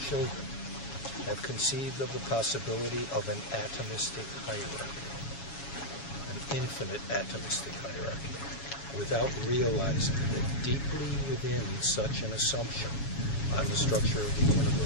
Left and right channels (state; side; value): late; right; 7.2 ms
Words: children, have conceived of the possibility of an atomistic hierarchy, an infinite atomistic hierarchy, without realizing that deeply within such an assumption on the structure of the